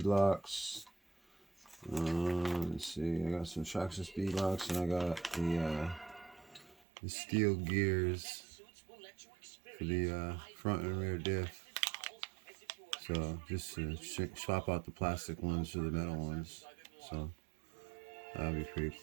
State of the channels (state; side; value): drops out; left; at 6.8 s